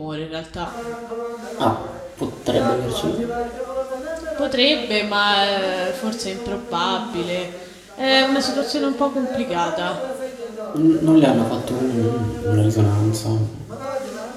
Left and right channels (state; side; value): identical; both; correlation 1.00